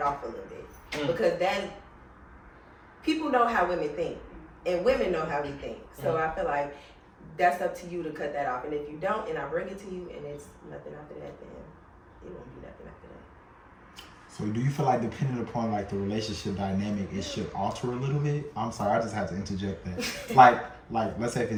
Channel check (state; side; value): identical; both; correlation 1.00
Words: off a little bit because then people know how women think and women know how we think. So I feel like that's up to you to cut that off. And if you don't, and I bring it to you, and it's nothing after that, then it won't be nothing after that. So do you feel like depending upon like the relationship dynamic, it should alter a little bit? I'm sorry, I just had to interject that. like let's say